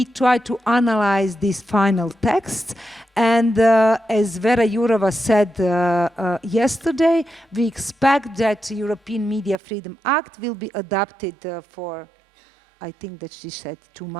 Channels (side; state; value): left; drops out; at 9.6 s